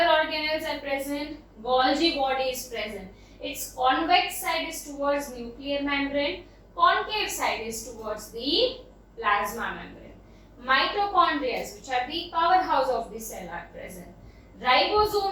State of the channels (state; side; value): identical; both; correlation 1.00